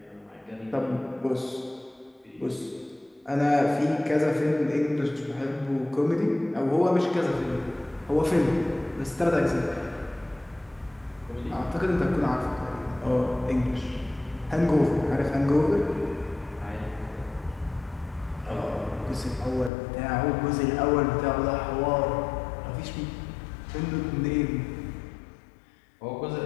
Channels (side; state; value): right; drops out; at 19.7 s